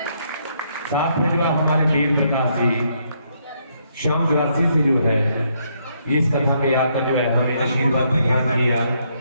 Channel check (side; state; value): both; inverted; correlation -0.73